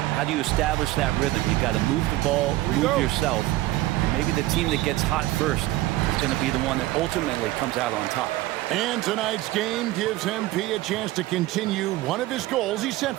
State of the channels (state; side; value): quieter; left; 17.1 dB